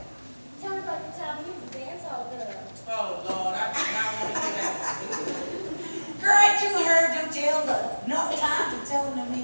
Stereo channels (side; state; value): both; inverted; correlation -1.00